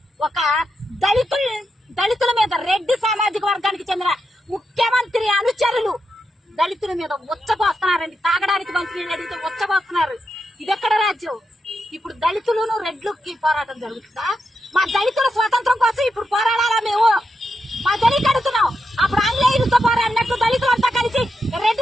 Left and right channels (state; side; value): normal; both; correlation 0.85